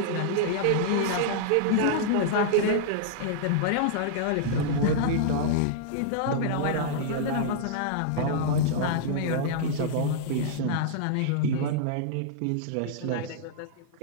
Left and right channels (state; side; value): different; both; correlation -0.02